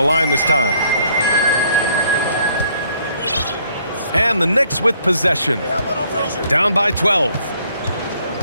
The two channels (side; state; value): both; inverted; correlation -0.65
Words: line this time. And the Knicks with possession. Down by 12.